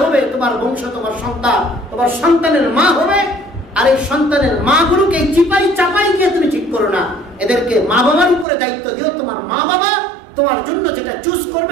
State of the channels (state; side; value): drops out; left; at 8.5 s